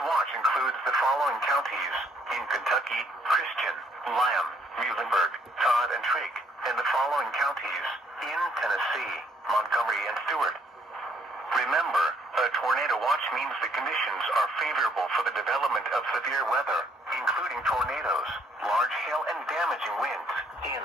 watch includes the following counties: in Kentucky, Christian, Lamb, Muhlenberg, Todd, and Trigg, and the following counties: in Tennessee, Montgomery, and Stewart. Remember, a tornado watch means the conditions are favorable for the development of severe weather, including tornadoes, large hail, and damaging winds in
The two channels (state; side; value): normal; both; correlation 0.66